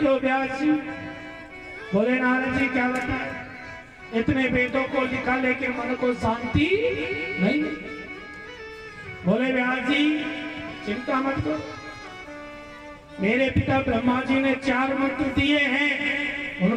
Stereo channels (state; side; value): identical; both; correlation 1.00